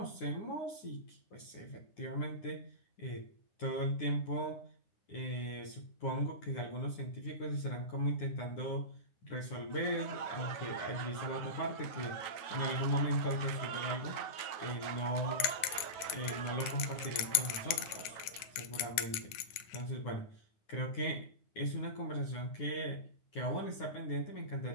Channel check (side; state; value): right; late; 9.8 ms